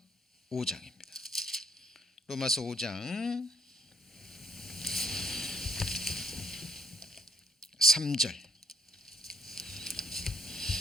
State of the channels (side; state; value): both; normal; correlation 0.66